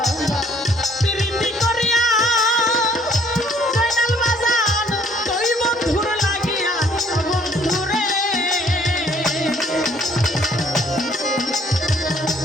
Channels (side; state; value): both; normal; correlation 0.62